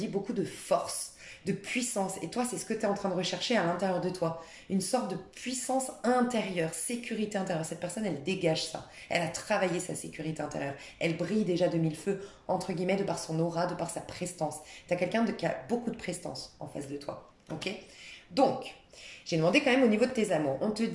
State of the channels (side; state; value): both; identical; correlation 1.00